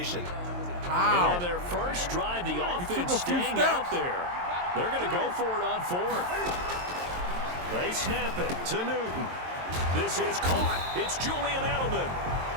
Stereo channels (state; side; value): late; left; 23 ms